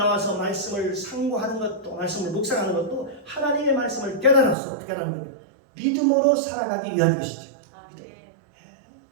말씀을 상고하는 것도, 말씀을 묵상하는 것도 하나님의 말씀을 깨달아서 어떻게 하는 겁니까? 믿음으로 살아가기 위한 것이죠.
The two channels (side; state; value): left; drops out; at 4.5 s